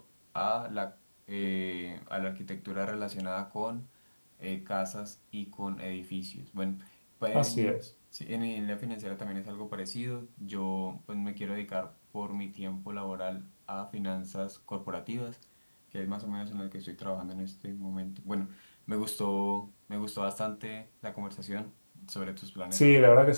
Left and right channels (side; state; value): both; inverted; correlation -1.00